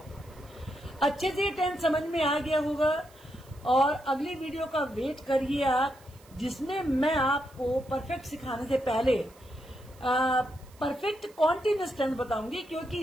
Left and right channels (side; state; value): right; noise; hiss, 27 dB below the sound